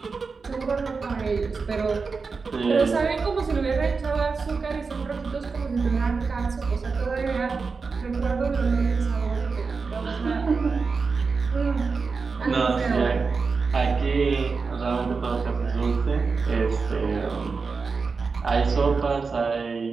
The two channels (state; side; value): quieter; left; 4.7 dB